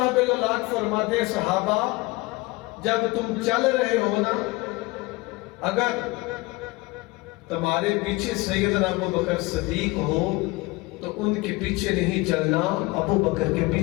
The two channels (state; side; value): quieter; right; 22.9 dB